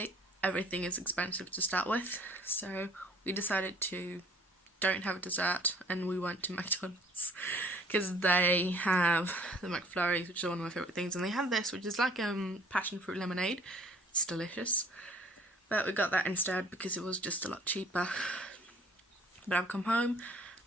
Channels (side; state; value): both; normal; correlation 0.55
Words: everything is expensive to start with, so we decided to don't have a dessert, and we went to McDonald's because they have the McFlurries, which is one of my favourite things, and they have this, which is like passion fruit lemonade. It's delicious, but we got that instead because it was just a lot cheaper. But I've come home.